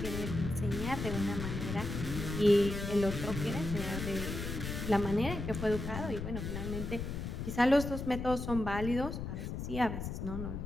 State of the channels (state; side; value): noise; left; rumble, 5 dB below the sound